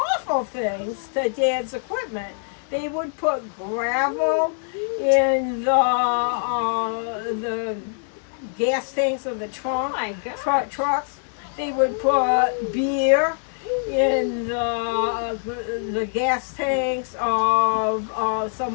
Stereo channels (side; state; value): right; silent; digital silence